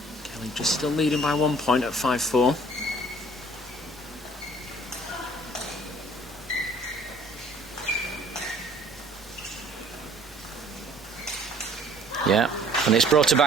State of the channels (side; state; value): both; normal; correlation 0.54